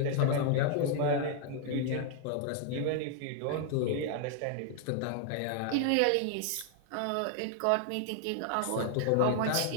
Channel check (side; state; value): both; different; correlation 0.00